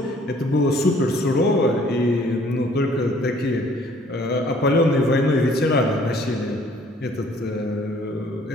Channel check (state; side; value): normal; both; correlation 0.58